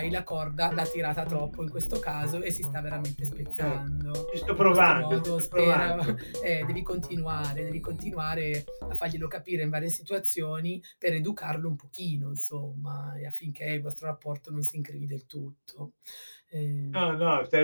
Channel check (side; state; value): both; inverted; correlation -1.00